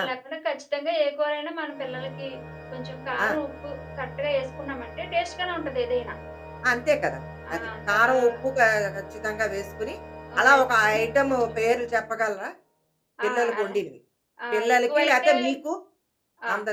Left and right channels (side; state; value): both; identical; correlation 1.00